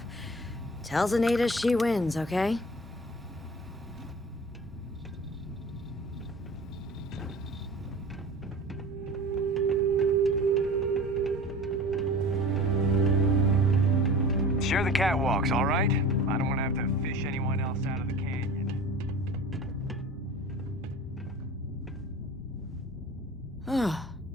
Tell Zenaida she wins, okay? Share the catwalks, all right? I don't want to have to fish anyone else out of the canyon.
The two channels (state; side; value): normal; both; correlation 0.39